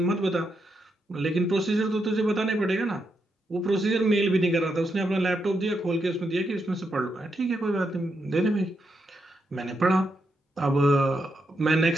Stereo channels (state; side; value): normal; both; correlation 0.82